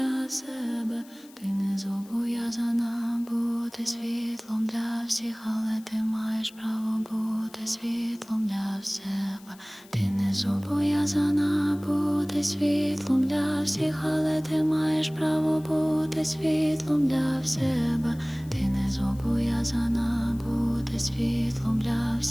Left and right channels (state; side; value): noise; left; hiss, 24 dB below the sound